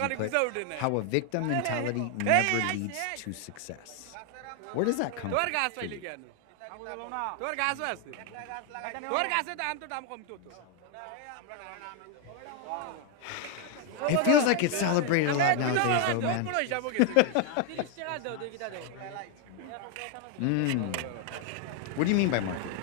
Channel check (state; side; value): different; both; correlation 0.01